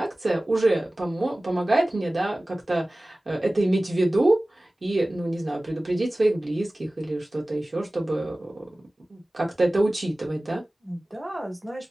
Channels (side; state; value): both; normal; correlation 0.98